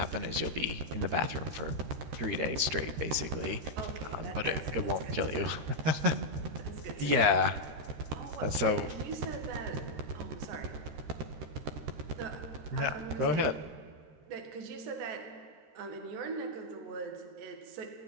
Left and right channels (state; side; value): late; left; 13 ms